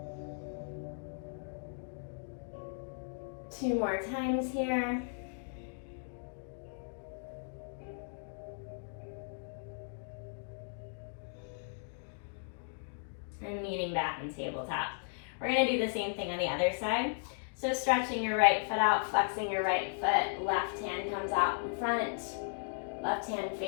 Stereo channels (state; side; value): silent; right; digital silence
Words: Two more times here. And meeting back in tabletop. We're gonna do the same thing on the other side. So stretching your right foot out, flexing your right foot, left hand comes out in front, left hand